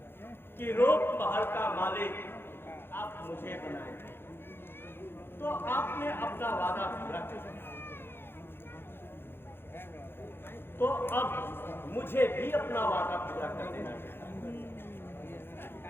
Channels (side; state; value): right; late; 0.11 ms